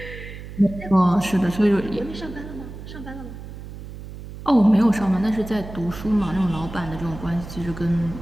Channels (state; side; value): noise; right; hum, 12 dB below the sound